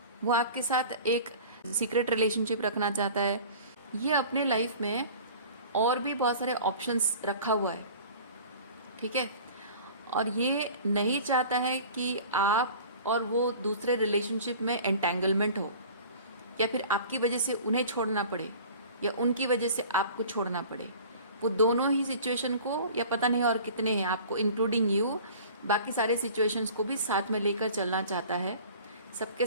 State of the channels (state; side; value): inverted; both; correlation -0.44